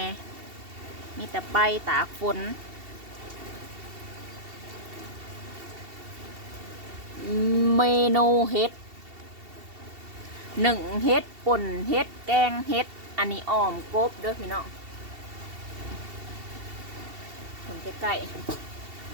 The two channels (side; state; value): left; late; 2.7 ms